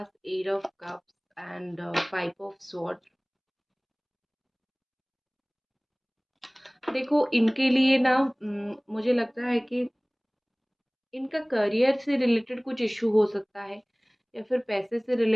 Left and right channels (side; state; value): both; identical; correlation 1.00